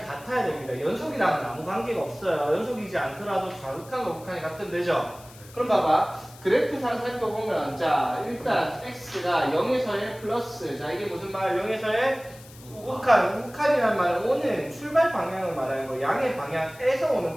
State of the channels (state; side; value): noise; left; hiss, 22 dB below the sound